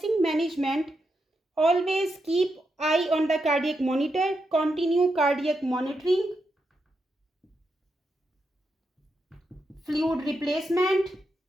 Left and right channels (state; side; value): normal; both; correlation 0.84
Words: management, always keep eye on the cardiac monitor, continue cardiac monitoring, fluid replacement,